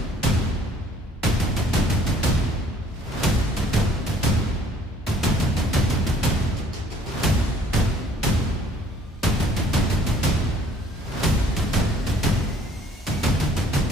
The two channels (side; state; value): both; normal; correlation 0.58